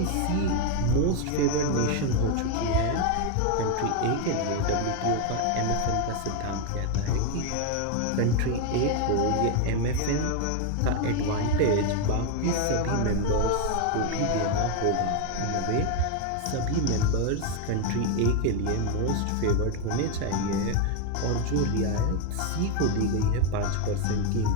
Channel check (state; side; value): different; both; correlation 0.01